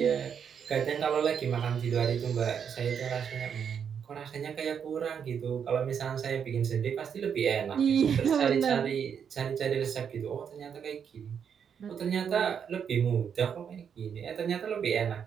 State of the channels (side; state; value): left; quieter; 7.5 dB